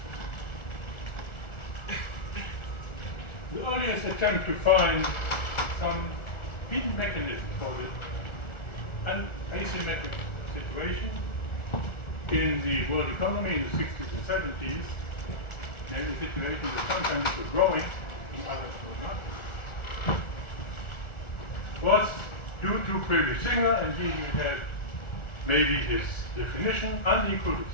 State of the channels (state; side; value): late; right; 1.4 ms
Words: The earliest attempt to find some hidden mechanism for an asymmetric situation in the world economy in the 60s and 70s, namely situations that sometimes were growing and others were not, was due to previous Singer, and here you have maybe his definition: unequal